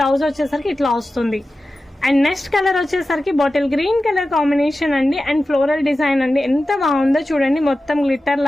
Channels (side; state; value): both; normal; correlation 0.94